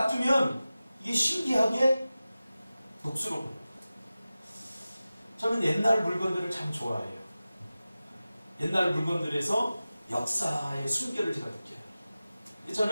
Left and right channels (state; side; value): inverted; both; correlation -0.96